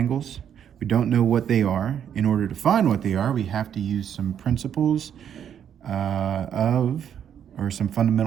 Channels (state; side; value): quieter; left; 9.0 dB